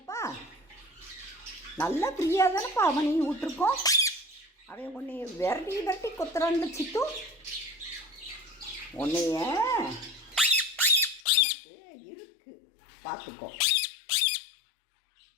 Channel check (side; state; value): right; drops out; at 11.2 s